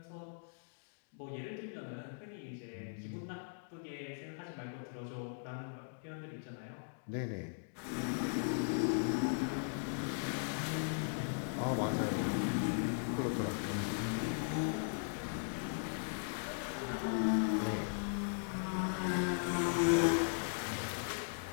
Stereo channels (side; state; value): right; silent; digital silence